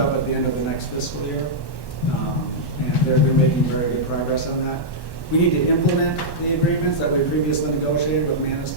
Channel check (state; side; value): late; right; 1.1 ms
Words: at the end of the next fiscal year. And they're been making very good progress on that. We need to implement the agreements that we previously negotiated with